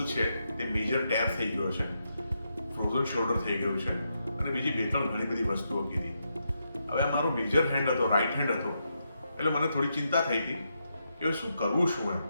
છે તે મેજર ટેર થઈ ગયો છે, ફ્રોઝન શોલ્ડર થઈ ગયું છે અને બીજી બે ત્રણ ઘણી બધી વસ્તુઓ કીધી. હવે આ મારો મેજર હેન્ડ હતો, રાઈટ હેન્ડ હતો, એટલે મને થોડી ચિંતા થઈ હતી કે શું કરવું શું એમ.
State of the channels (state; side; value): inverted; both; correlation -0.83